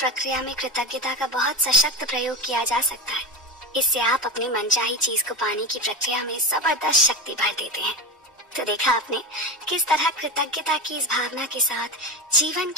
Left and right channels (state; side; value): normal; both; correlation 0.21